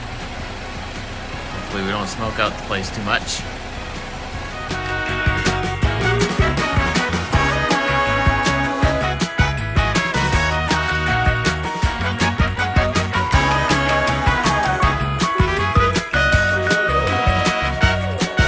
Hopefully we don't smoke out the place too much.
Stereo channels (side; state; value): both; identical; correlation 1.00